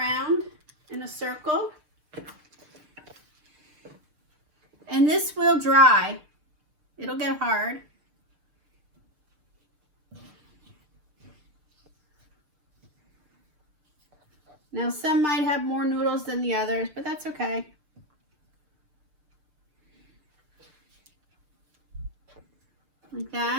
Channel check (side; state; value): left; late; 6.7 ms